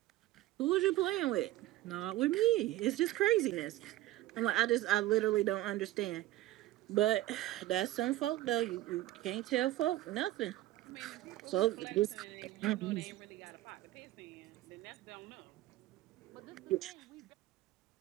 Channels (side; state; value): left; quieter; 16.0 dB